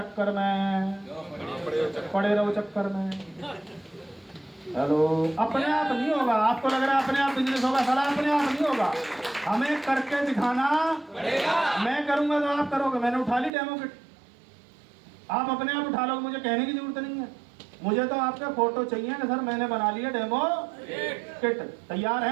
में, पड़े रहो चक्कर में। हेलो, अपने आप नहीं होगा। आपको लग रहा है अपने आप बिजनेस होगा, साला अपने आप नहीं होगा। हमें करके दिखाना पड़ेगा। मैं करूंगा तो आप करोगे। मैंने उठा ली डेमो किट, आप अपने आप उठा लोगे, मुझे कहने की जरूरत नहीं है। मुझे तो आपका फोटो चाहिए कि सर मैंने बना लिया डेमो किट, तैयार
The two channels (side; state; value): left; drops out; at 13.5 s